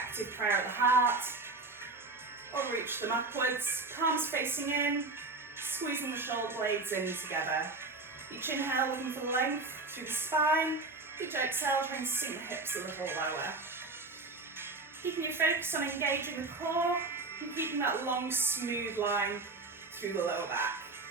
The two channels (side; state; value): left; quieter; 3.5 dB